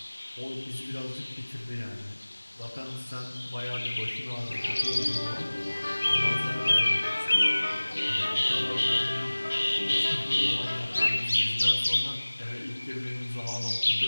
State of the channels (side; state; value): both; inverted; correlation -1.00